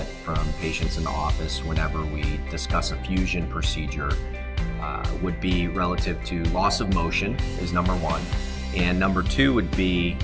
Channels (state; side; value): identical; both; correlation 1.00